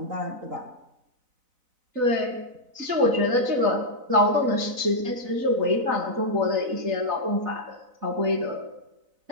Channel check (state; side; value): late; left; 4.0 ms